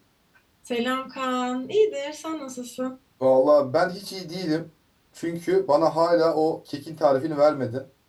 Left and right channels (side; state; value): both; identical; correlation 1.00